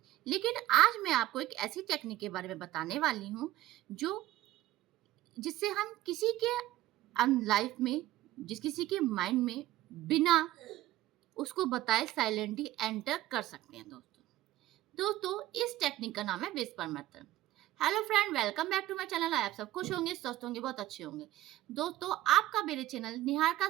लेकिन आज मैं आपको एक ऐसी टेक्निक के बारे में बताने वाली हूँ, जो जिससे हम किसी के लाइफ में, किसी के माइंड में बिना उसको बताए साइलेंटली एंटर कर सकते हैं दोस्तों। इस टेक्निक का नाम है whisper method. Hello friend, welcome back to my channel. आप सब खुश होंगे, स्वस्थ होंगे, बहुत अच्छे होंगे। दोस्तों, आपका मेरे चैनल निहार का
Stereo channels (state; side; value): quieter; left; 15.2 dB